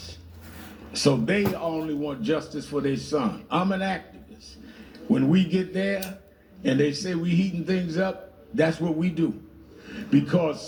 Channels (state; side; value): identical; both; correlation 1.00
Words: So they only want justice for their son. I'm an activist. When we get there and they say we heating things up, that's what we do. Because